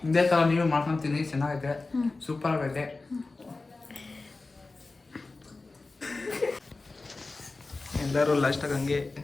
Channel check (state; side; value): quieter; right; 3.5 dB